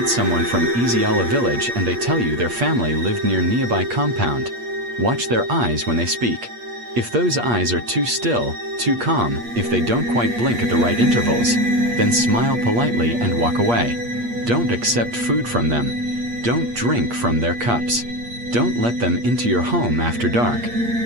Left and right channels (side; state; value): left; late; 8.5 ms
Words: someone from Eziala village and they tell you their family lived near nearby compound, watch their eyes when they speak. If those eyes are too still, too calm, if they don't quite blink at the right intervals, then smile politely and walk away. Don't accept food from them. Don't drink from their cups. Don't let them into your home after dark,